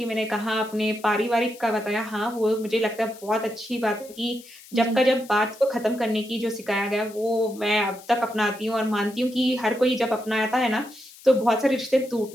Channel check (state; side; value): noise; left; hiss, 21 dB below the sound